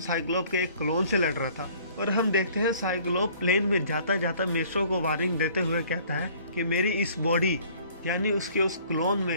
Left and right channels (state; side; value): inverted; both; correlation -0.55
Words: साइक्लोप के एक क्लोन से लड़ रहा था। और हम देखते हैं साइक्लोप प्लेन में जाता जाता मेट्रो को वार्निंग देते हुए कहता है कि मेरी इस बॉडी यानी उसके उस क्लोन